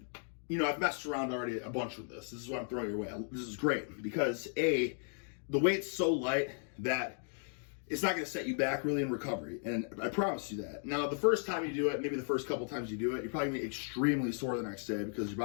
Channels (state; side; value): silent; right; 54 dB below the other